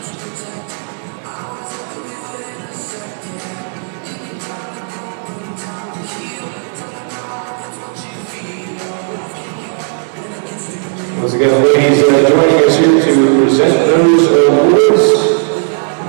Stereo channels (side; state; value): left; silent; 67 dB below the other